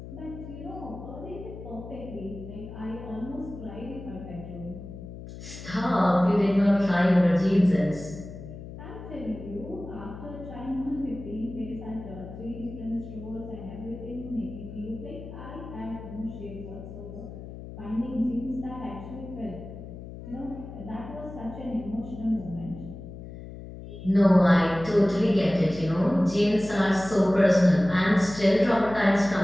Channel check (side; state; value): left; noise; hum, 12 dB below the sound